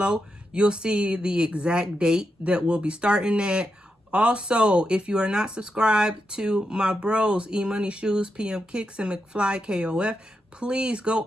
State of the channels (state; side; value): normal; both; correlation 0.85